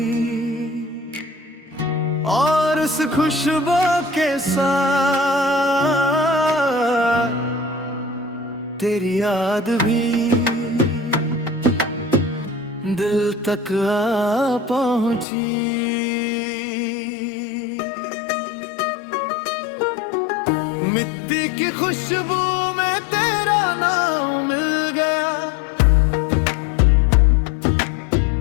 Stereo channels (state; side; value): drops out; right; at 15.2 s